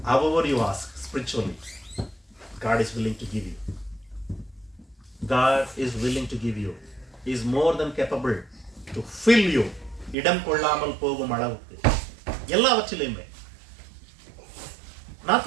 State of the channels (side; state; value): left; drops out; at 10.2 s